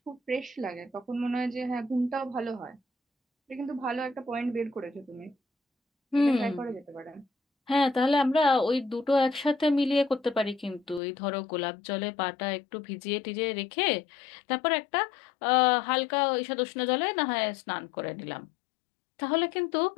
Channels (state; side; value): drops out; right; at 11.0 s